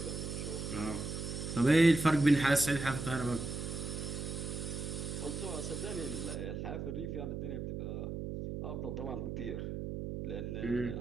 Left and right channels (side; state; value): right; noise; hum, 5 dB below the sound